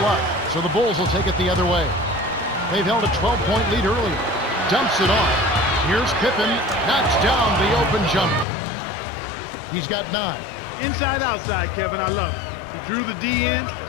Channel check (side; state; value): right; drops out; at 8.5 s